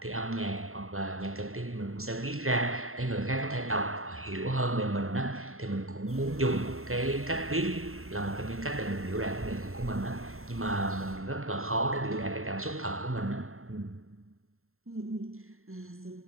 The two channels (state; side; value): late; left; 0.62 ms